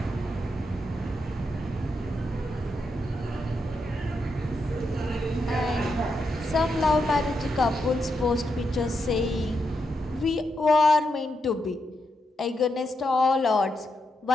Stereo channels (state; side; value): normal; both; correlation 0.83